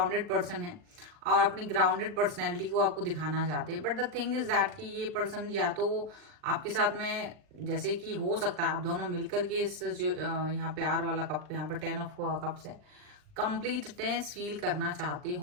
पर्सन है और अपनी ग्राउंडेड पर्सनैलिटी को आपको दिखाना चाहते हैं। But the thing is that कि ये पर्सन या तो आपके साथ में, जैसे कि हो सकता है आप दोनों मिलकर के इस जो यहाँ प्यार वाला कप, यहाँ पर 10 ऑफ कप्स है, कंप्लीटनेस फील करना चाहते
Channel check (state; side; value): late; left; 39 ms